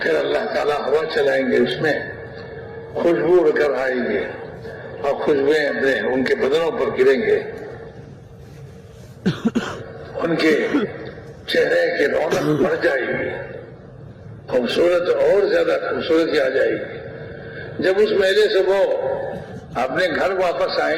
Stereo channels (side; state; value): both; identical; correlation 1.00